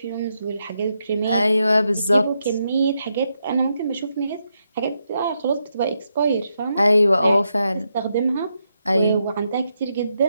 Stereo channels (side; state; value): both; inverted; correlation -0.82